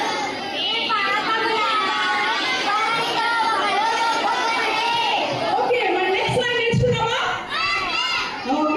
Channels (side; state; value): both; identical; correlation 1.00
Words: ఓకే మరి నెక్స్ట్ లైన్ నేర్చుకుందామా?